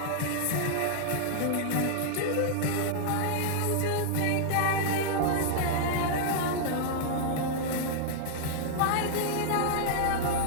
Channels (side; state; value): both; different; correlation -0.01